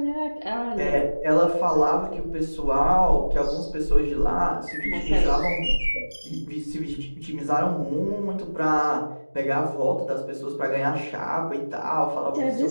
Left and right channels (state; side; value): inverted; both; correlation -1.00